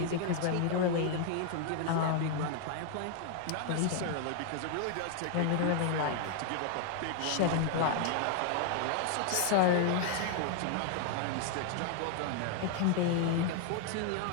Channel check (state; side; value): different; both; correlation 0.00